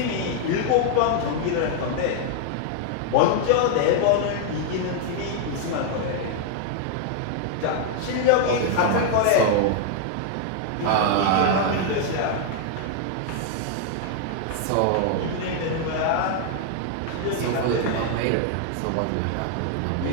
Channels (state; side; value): different; both; correlation 0.00